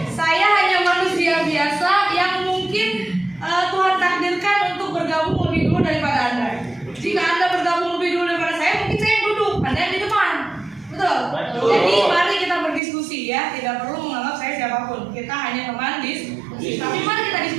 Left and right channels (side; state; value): left; drops out; at 12.8 s